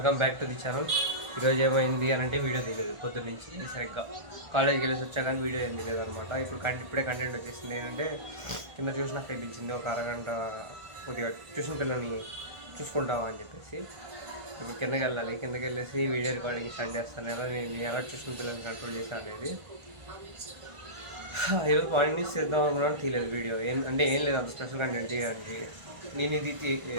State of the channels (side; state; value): left; late; 1.5 ms